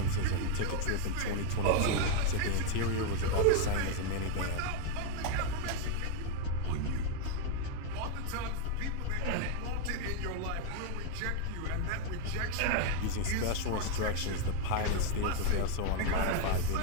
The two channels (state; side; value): different; both; correlation 0.01